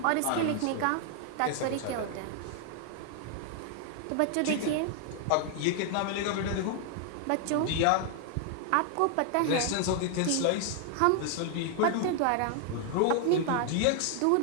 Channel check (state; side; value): different; both; correlation 0.00